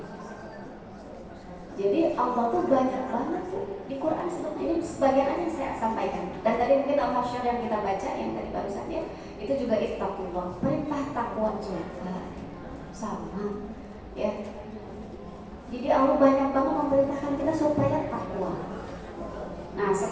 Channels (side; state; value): both; identical; correlation 1.00